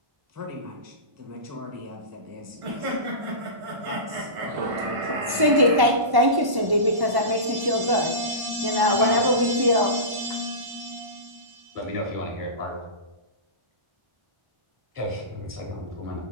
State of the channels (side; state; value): left; late; 1.1 ms